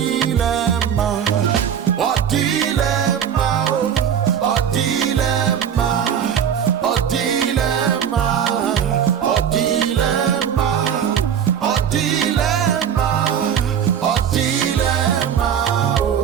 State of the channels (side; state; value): left; quieter; 8.4 dB